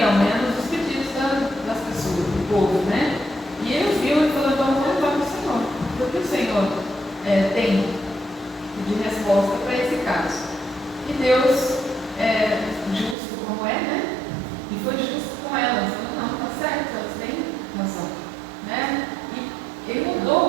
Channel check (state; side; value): drops out; left; at 13.2 s